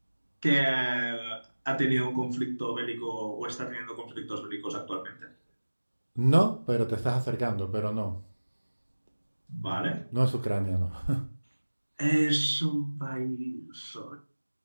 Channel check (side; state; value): both; inverted; correlation -1.00